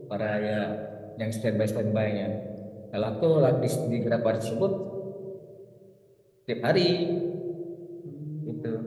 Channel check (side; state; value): both; identical; correlation 1.00